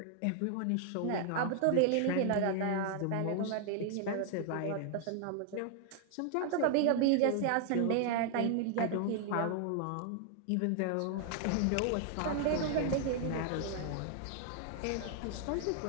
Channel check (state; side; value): different; both; correlation 0.00